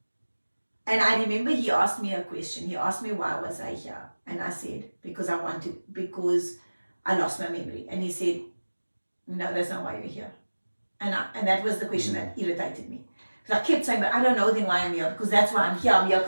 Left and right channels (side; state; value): both; inverted; correlation -1.00